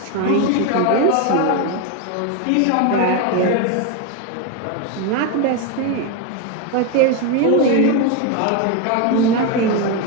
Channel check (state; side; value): different; both; correlation 0.02